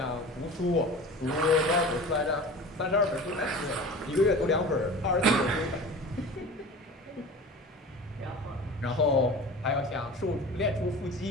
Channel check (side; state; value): both; normal; correlation 0.37